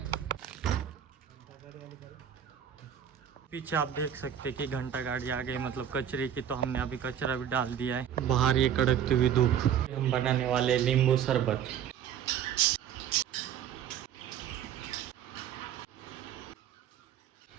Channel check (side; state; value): left; quieter; 9.3 dB